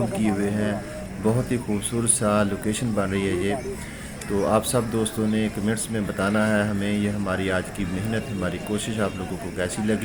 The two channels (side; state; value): both; identical; correlation 1.00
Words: किए हुए हैं। बहुत ही खूबसूरत सा लोकेशन बन रही है ये। तो आप सब दोस्तों ने कमेंट्स में बताना है हमें ये हमारी आज की मेहनत, हमारी कोशिश आप लोगों को कैसी